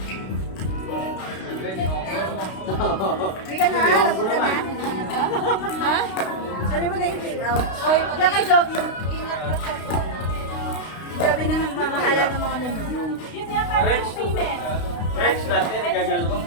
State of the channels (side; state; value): right; late; 32 ms